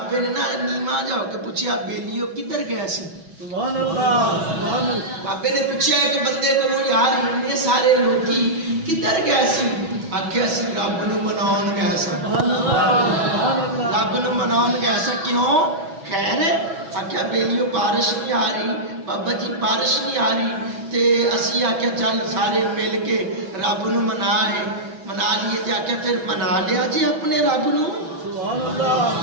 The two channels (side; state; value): left; late; 6.1 ms